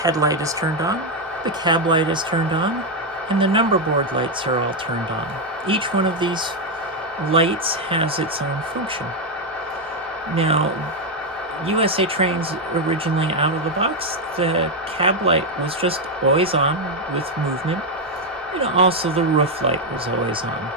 is turned on, the cab light is turned on, and the number board lights are all turned on. Each one of these lights has its own function. Now, USA Trains originally out of the box, the cab light was just always on with movement, and also the roof light was always on.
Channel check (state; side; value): normal; both; correlation 0.03